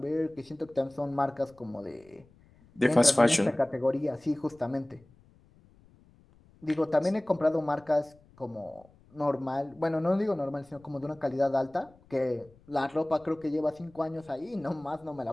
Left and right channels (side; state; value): left; noise; rumble, 28 dB below the sound